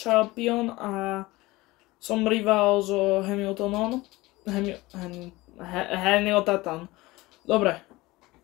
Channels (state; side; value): quieter; right; 20.3 dB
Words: a som rival so Hamiltonom. Hamilton. Dobre.